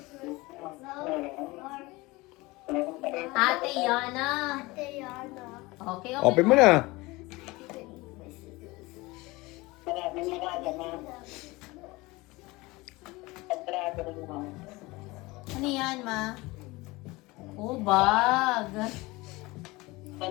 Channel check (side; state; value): right; quieter; 22.2 dB